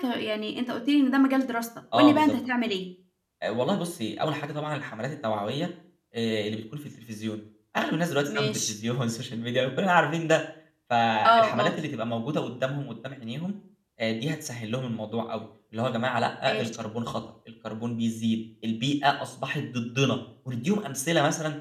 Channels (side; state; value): both; identical; correlation 1.00